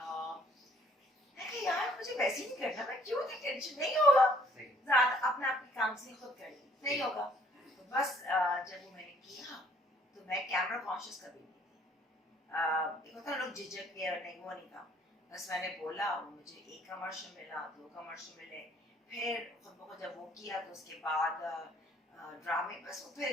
यार मुझे वैसे ही नहीं करना, मैं क्यों नहीं, टेंशन नहीं होगा, ज़्यादा अपना अपनी काउंसलिंग खुद कर ली, नहीं होगा। तो बस जब वो मैंने किया तो मैं कैमरा कॉन्शियस कभी नहीं थी। एक होता है लोग झिझक के, नहीं वो नहीं था। बस मैंने बोला, मुझे एक कमर्शियल मिला, 2 कमर्शियल मिले, फिर खुद ब खुद जब वो किया तो उसके बाद ड्रामे, बस वो फिर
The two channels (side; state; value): both; normal; correlation 0.61